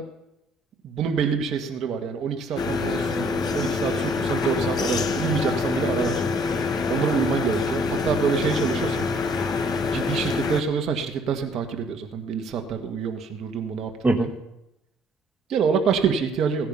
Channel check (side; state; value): both; normal; correlation 0.61